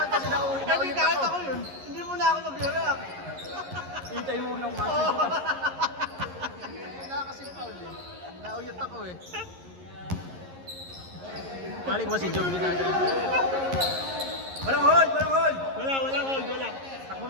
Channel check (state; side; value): late; left; 11 ms